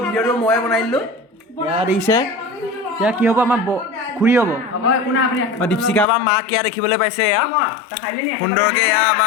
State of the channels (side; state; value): right; drops out; at 6.1 s